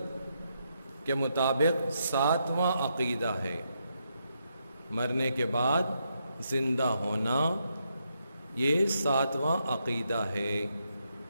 کے مطابق 7واں عقیدہ ہے۔ مرنے کے بعد زندہ ہونا یہ 7واں عقیدہ ہے۔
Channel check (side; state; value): both; inverted; correlation -0.80